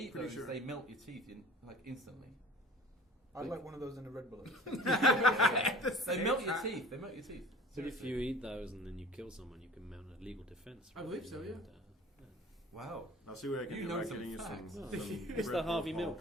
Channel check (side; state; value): both; normal; correlation 0.44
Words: pretty those, sure. they melt your teeth instantly. I'd like one of those in a Red Bull. They melt your teeth. They melt your teeth. But if you eat those and then you kill someone, you can mount a legal defense. I believe so, yeah. Wow. I'll see what I can You do know by some getting you facts. some. It's Red the Bull Harvey Paul. Milk